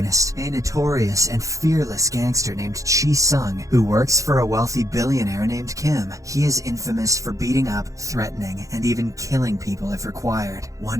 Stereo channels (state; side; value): late; left; 0.16 ms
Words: a notorious and fearless gangster named Sung, who works for a wealthy billionaire named Kim. He is infamous for beating up, threatening, and even killing people if required.